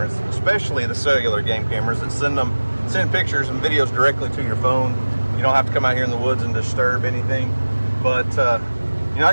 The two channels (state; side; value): inverted; both; correlation -1.00